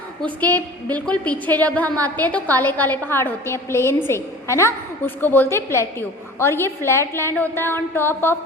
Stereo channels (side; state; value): both; normal; correlation 0.42